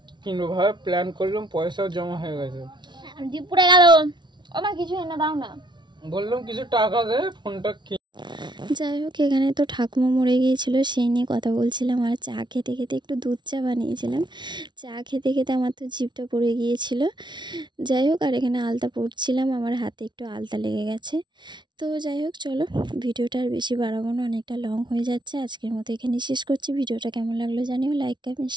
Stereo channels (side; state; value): left; late; 0.22 ms